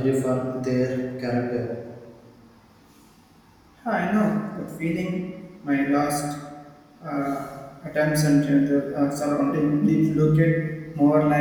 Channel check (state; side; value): identical; both; correlation 1.00